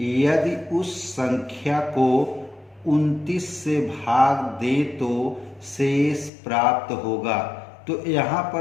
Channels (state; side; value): drops out; right; at 6.3 s